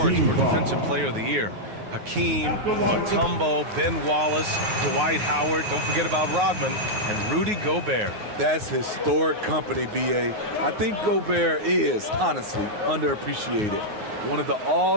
for Defensive Player of the Year. Hakeem, Mutombo, Ben Wallace, Dwight Howard, don't forget about Rodman, and Rudy Gobert. That's historic company, B.A. I think Gobert is, honestly, underappreciated. One of the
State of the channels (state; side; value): late; left; 9.5 ms